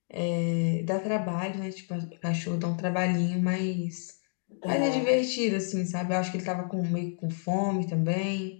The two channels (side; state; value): right; silent; digital silence